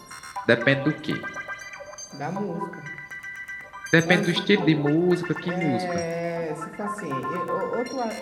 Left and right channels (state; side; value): identical; both; correlation 1.00